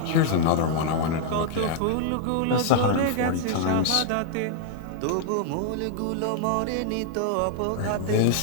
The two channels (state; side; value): different; both; correlation 0.00